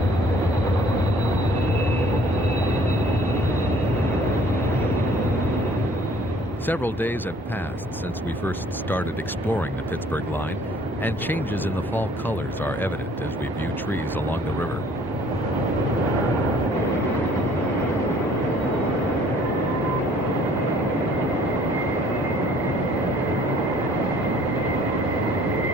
Several days have passed since we first started exploring the Pittsburgh Line, and changes in the fall colors are evident as we view trees along the river.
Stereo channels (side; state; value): both; normal; correlation 0.56